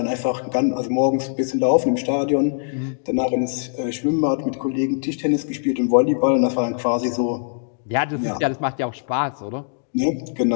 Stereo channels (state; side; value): silent; right; digital silence